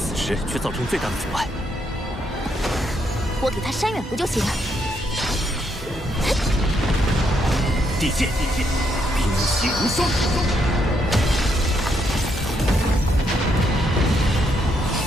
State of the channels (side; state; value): both; normal; correlation 0.76